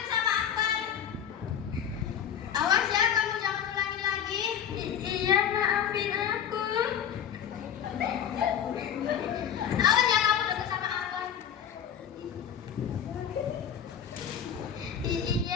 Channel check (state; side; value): quieter; right; 8.7 dB